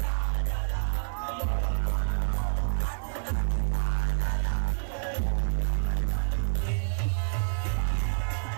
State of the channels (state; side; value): silent; left; 59 dB below the other